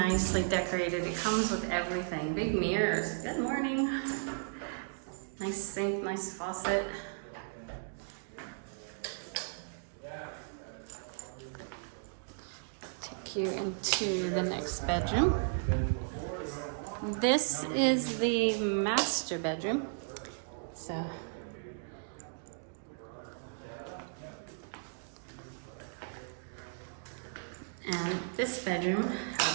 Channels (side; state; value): left; silent; digital silence